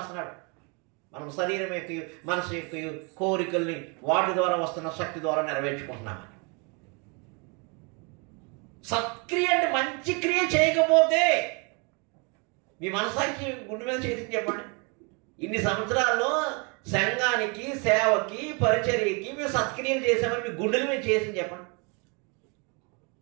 మనం శరీరం యొక్క మనసు యొక్క కోరికల్ని వాటి ద్వారా వస్తున్న శక్తి ద్వారా నెరవేర్చుకుంటున్నామని. సత్క్రియ అంటే మంచి క్రియ చేయకపోతే మీ మనసానికి గుండె మీద చేసి చెప్పండి, ఇన్ని సంవత్సరాల్లో సంఘానికి, సేవకి, పరిచర్యకి మేము సత్క్రియలు చేసామని మీ గుండెల మీద చేసి చెప్పండి.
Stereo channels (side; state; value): left; quieter; 33.0 dB